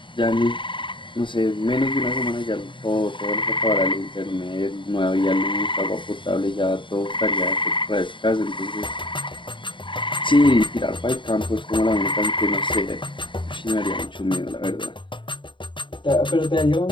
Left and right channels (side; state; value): right; late; 0.24 ms